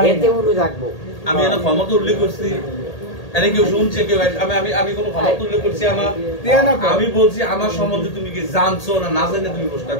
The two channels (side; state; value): right; late; 1.8 ms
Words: এতে উড়ু থাকবো। আমি এটা ক্ষমতা উল্লেখ করছি, এনে কেউ শুনছে কেউ? আমি কোনো ক্ষমতা উল্লেখ করছি আমার? আমি বলছি আমার সম্বন্ধে তুমি কি জানছো না না জানে তুমি প্রশ্ন